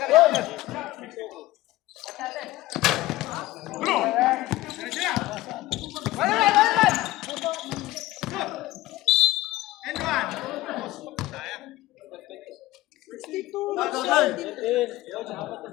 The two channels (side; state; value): right; quieter; 17.1 dB